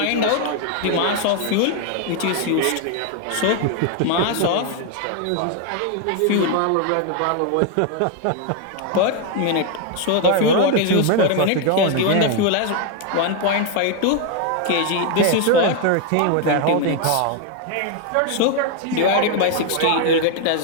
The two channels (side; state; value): both; different; correlation 0.01